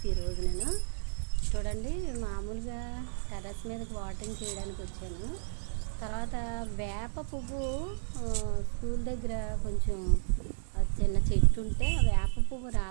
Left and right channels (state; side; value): silent; left; digital silence